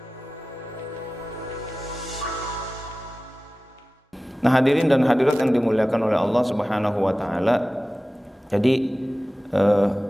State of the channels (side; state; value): both; normal; correlation 0.96